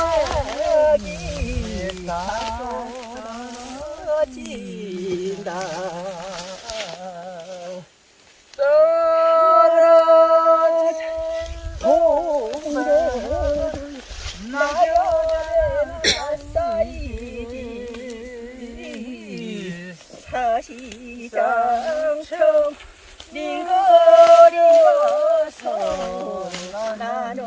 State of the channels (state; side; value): identical; both; correlation 1.00